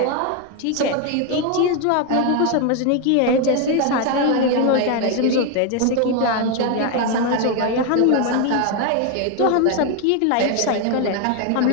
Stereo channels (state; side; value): different; both; correlation 0.01